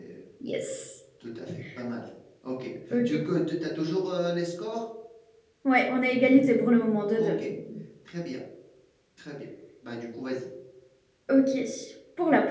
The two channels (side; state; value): both; identical; correlation 1.00